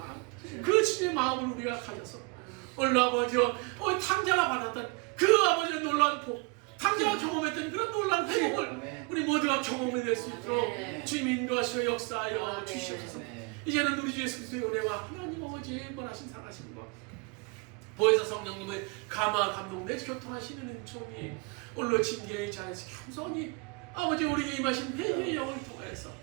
그 주님의 마음을 우리가 가져서 오늘 아버지와 탕자가 받았던 그 아버지의 놀라운 복, 탕자가 경험했던 그런 놀라운 회복을 우리 모두가 경험해 낼 수 있도록 주님 인도하시고 역사하여 주시옵소서. 이제는 우리 주 예수 그리스도의 은혜와 하나님 아버지의 원하신 사랑하심과 보혜사 성령님의 감화 감동 내 교통하시는 은총이 오늘 징계의 자리에서 겸손히 아버지 우리에게 임하신 회개의 영을 통해서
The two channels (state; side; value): quieter; left; 30.1 dB